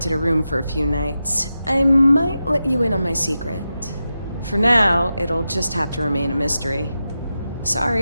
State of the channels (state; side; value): inverted; both; correlation -0.90